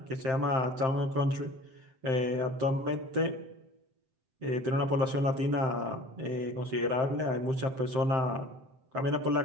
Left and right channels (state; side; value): late; left; 7.7 ms